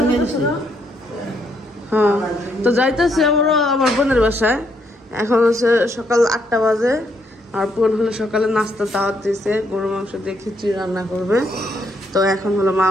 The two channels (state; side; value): normal; both; correlation 0.74